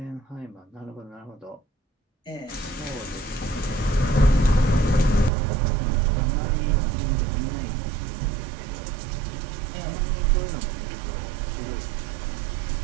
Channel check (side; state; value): left; drops out; at 5.3 s